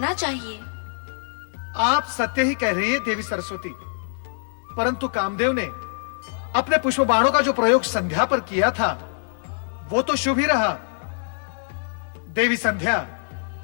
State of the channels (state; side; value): silent; right; digital silence